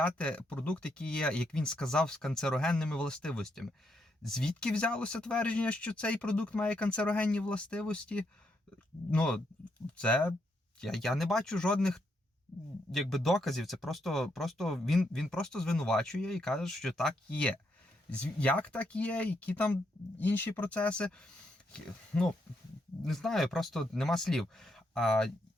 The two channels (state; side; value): normal; both; correlation 0.78